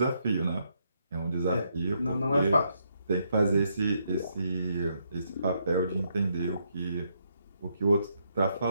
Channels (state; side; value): inverted; both; correlation -0.76